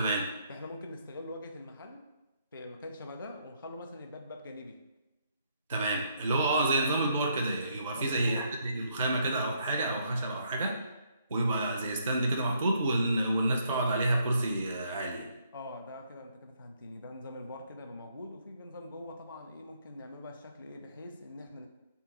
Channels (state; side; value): inverted; both; correlation -0.71